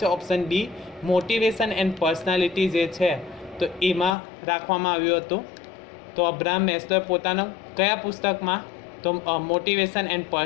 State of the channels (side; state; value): right; drops out; at 4.2 s